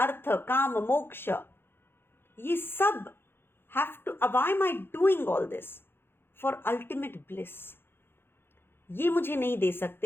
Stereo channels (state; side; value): late; right; 0.11 ms